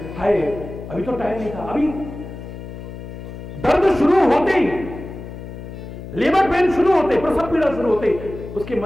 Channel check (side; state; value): left; noise; hum, 11 dB below the sound